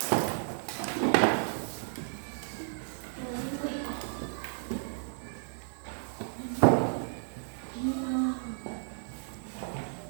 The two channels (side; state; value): left; silent; digital silence